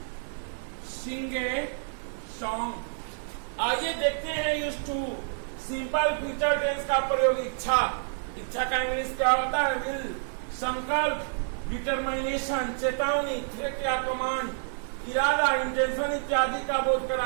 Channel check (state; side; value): silent; left; 59 dB below the other